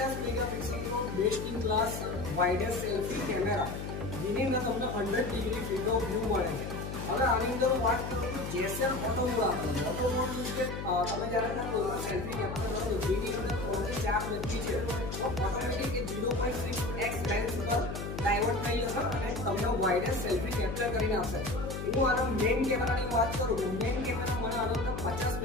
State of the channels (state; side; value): noise; left; hum, 6 dB below the sound